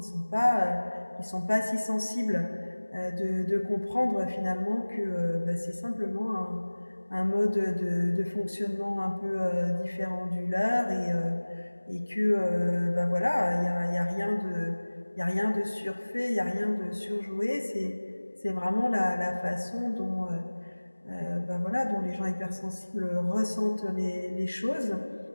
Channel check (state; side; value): inverted; both; correlation -1.00